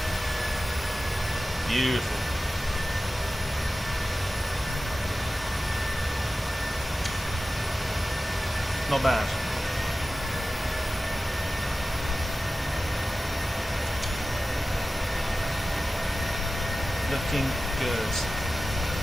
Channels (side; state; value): both; normal; correlation 0.95